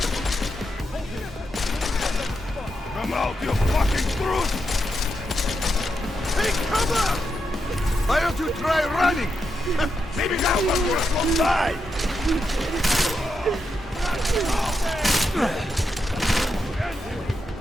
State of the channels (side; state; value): both; normal; correlation 0.85